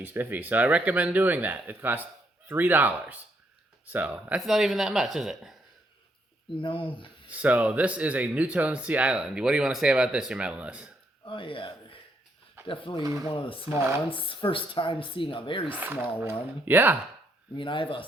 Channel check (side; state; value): both; normal; correlation 0.74